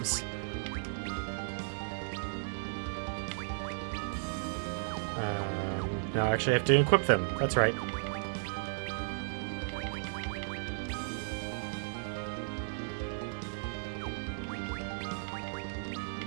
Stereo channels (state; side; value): silent; left; digital silence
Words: Now I actually have to equip them. That's right.